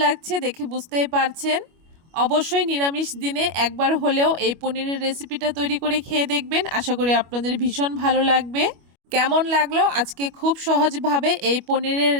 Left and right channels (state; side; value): late; left; 25 ms